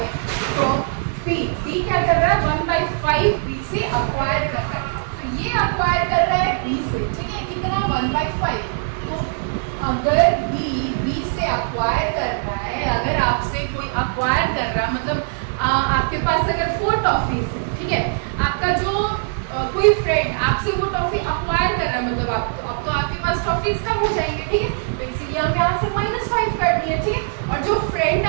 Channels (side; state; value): left; silent; digital silence